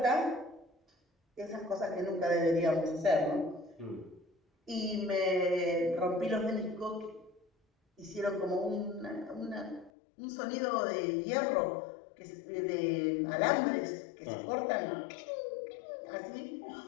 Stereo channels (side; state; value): right; drops out; at 9.9 s